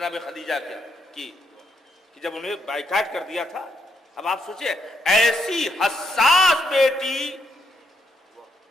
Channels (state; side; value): normal; both; correlation 0.77